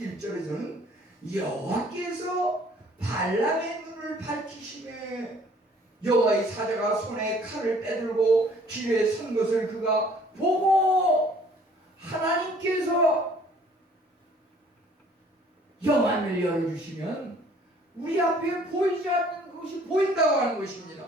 여호와께서 발람의 눈을 밝히시매 여호와의 사자가 손에 칼을 빼들고 길에 선 것을 그가 보고 하나님께서 영안을 열어주시면 우리 앞에 보이지 않는 것이 보인다고 하는 것입니다.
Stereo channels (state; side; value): normal; both; correlation 0.57